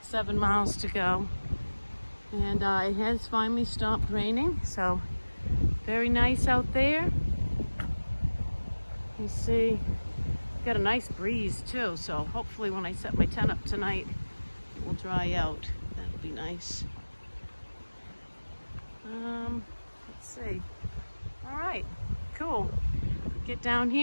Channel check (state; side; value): inverted; both; correlation -1.00